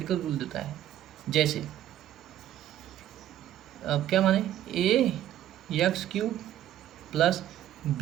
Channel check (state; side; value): quieter; left; 12.1 dB